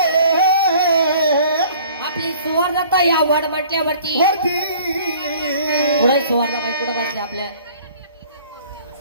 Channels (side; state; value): both; inverted; correlation -0.52